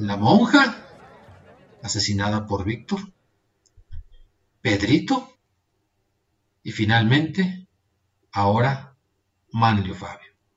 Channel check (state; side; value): identical; both; correlation 1.00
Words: monja, asesinada por Víctor, Pedrito y finalmente, ahora, Manlio Fabio.